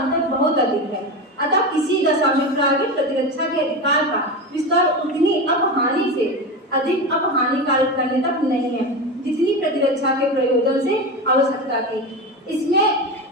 बहुत अधिक है। अतः किसी दशा में प्राइवेट प्रतिरक्षा के अधिकार का विस्तार उतनी अपहानि से अधिक अपहानिकारक करने तक नहीं है जितनी प्रतिरक्षा के प्रयोजन से आवश्यकता थी। इसमें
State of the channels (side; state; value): both; normal; correlation 0.21